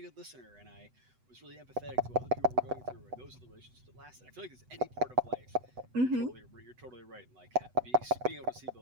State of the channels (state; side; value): late; left; 8.0 ms